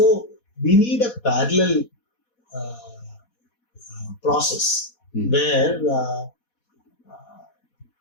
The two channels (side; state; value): right; late; 4.1 ms